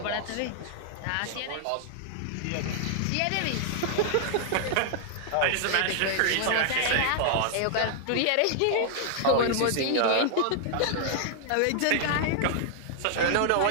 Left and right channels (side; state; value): both; different; correlation 0.00